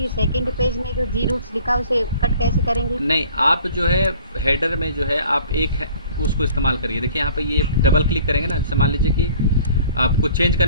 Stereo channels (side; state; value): both; inverted; correlation -0.51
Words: सेकंड पेज में जो जी रूट्स लिखा है उसे कट कैसे करेंगे? नहीं, आप जो है हेडर में जो है आप उसको इस्तेमाल करिए। देखिए यहाँ पे ये डबल क्लिक करेंगे ना, जैसे मान लीजिए कि आपको चेंज